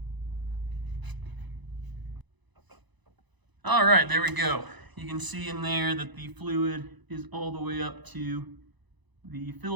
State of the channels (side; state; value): left; late; 1.0 ms